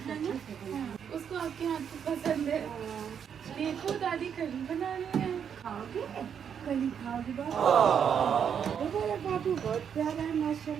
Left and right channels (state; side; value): quieter; left; 7.8 dB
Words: उसको आपके हाथ की पसंद है। देखो दादी कली बना रही है, खाओगे? कली खाओगे बाबू, बहुत प्यारा है